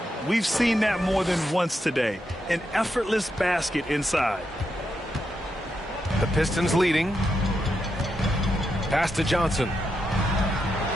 We've seen that more than once today. An effortless basket inside. The Pistons leading. Pass to Johnson.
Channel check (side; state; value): both; normal; correlation 0.84